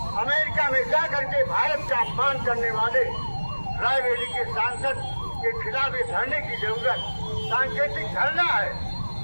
अमेरिका में जाकर के भारत का अपमान करने वाले रायबरेली के सांसद के खिलाफ धरने की जरूरत सांकेतिक धरना है।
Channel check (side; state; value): both; inverted; correlation -1.00